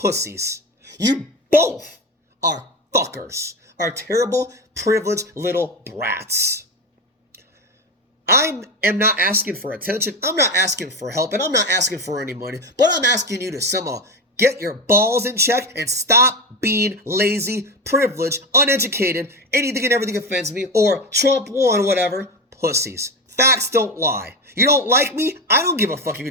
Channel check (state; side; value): normal; both; correlation 0.19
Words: You both are fuckers, are terrible, privileged little brats. I am not asking for attention, I'm not asking for help, and I'm not asking for any money, but I'm asking you to somehow get your balls in check and stop being lazy, privileged, uneducated, anything and everything offends me, or Trump won, whatever, pussies. Facts don't lie. You don't like me? I don't give a fuck if you